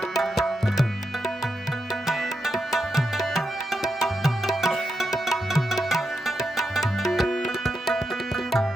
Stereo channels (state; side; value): normal; both; correlation 0.85